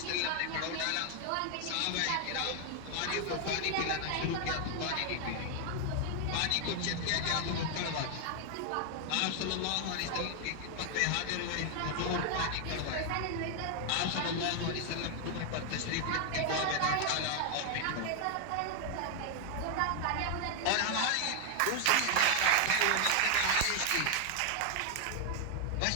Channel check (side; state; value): both; different; correlation 0.00